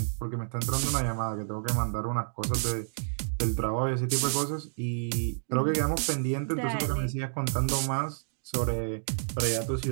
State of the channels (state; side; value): silent; left; digital silence